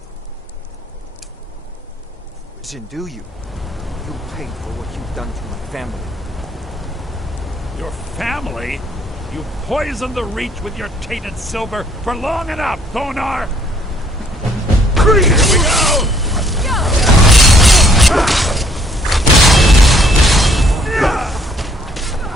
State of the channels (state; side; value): normal; both; correlation 0.64